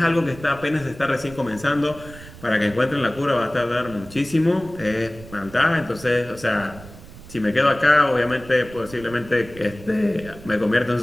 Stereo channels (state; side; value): noise; right; rumble, 17 dB below the sound